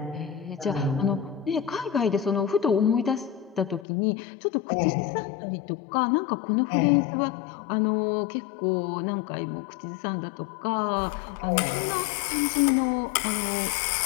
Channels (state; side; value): drops out; right; at 3.9 s